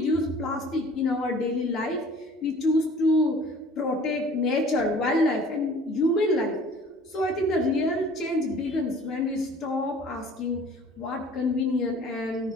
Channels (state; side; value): normal; both; correlation 0.49